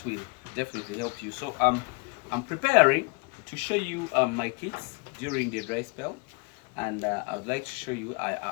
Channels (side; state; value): right; quieter; 29.9 dB